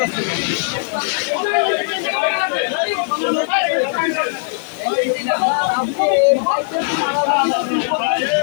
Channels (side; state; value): right; silent; digital silence